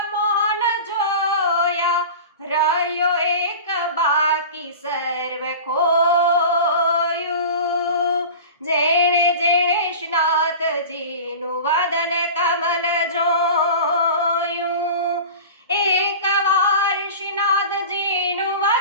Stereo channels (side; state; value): both; inverted; correlation -0.34